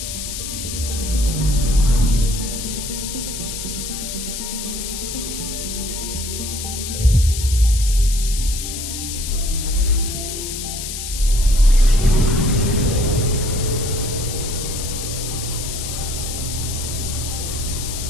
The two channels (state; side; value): noise; left; hiss, 6 dB below the sound